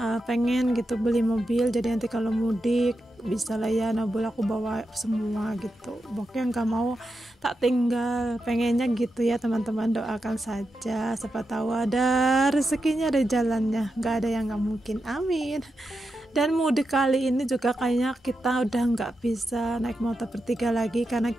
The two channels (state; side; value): normal; both; correlation 0.88